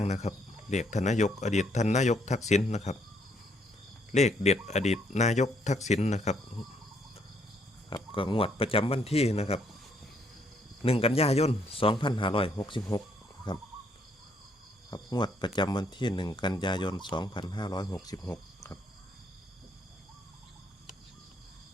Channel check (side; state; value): both; normal; correlation 0.70